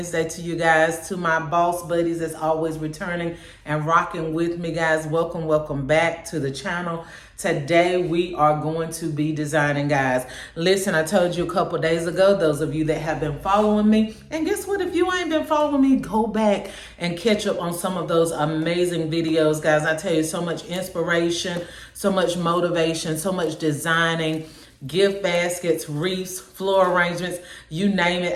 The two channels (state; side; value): identical; both; correlation 1.00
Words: to you guys. To my boss buddies that's always returning and rocking with me, guys. Welcome back to the channel. Today we are going to be designing, guys. Listen, I told you a couple days ago, those of you that have been following me, and guess what? If you ain't been following me, go back and catch up on some of those amazing videos, guys. I tell you, so much inspiration, so much motivation, so much designing, gift baskets, wreaths, floor arrangements, you name